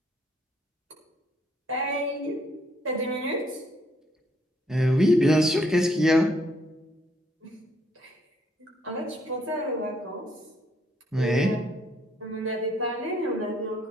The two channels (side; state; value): both; normal; correlation 0.70